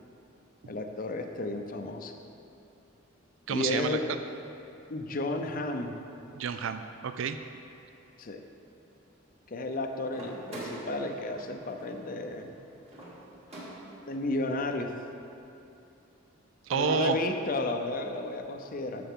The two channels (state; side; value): normal; both; correlation 0.12